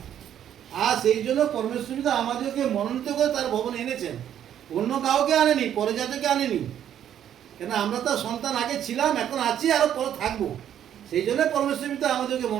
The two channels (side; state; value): left; quieter; 10.2 dB